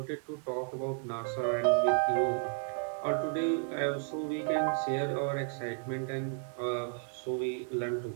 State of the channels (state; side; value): silent; left; 56 dB below the other